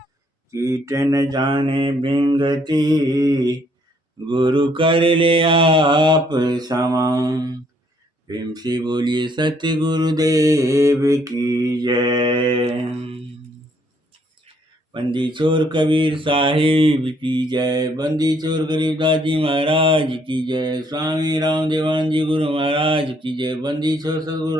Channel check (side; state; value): both; normal; correlation 0.67